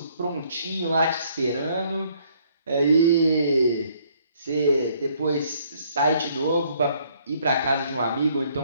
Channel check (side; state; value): both; inverted; correlation -0.65